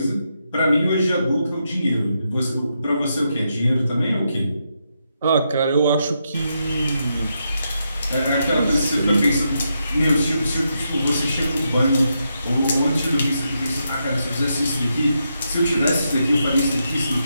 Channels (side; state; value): both; inverted; correlation -0.83